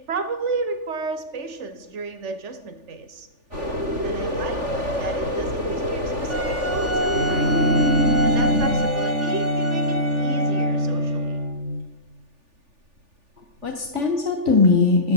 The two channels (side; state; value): left; late; 3.4 ms